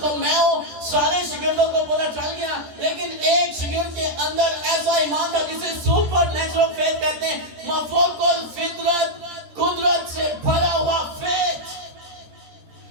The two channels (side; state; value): left; late; 13 ms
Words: میں ہوں، سارے شگردوں کو پتہ چل گیا. لیکن ایک شگرد کے اندر ایسا ایمان تھا جسے سپر نیچرل فیتھ کہتے ہیں، مفوق الفطرت، قدرت سے بھرا ہوا فیتھ.